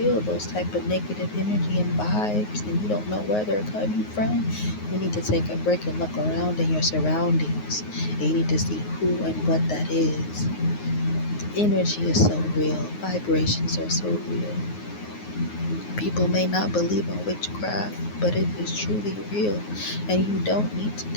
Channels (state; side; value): late; right; 9.5 ms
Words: those type of negative energy and vibes, and you don't know where they're coming from, you need to take a break and look around in your surroundings, and you need to see who and what that is. Energy is so real. Vibrations are so real. People may not believe in witchcraft, but it is truly real. And you don't need to